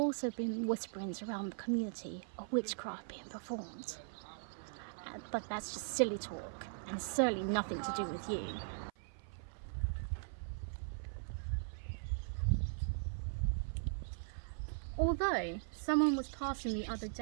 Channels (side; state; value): left; silent; 51 dB below the other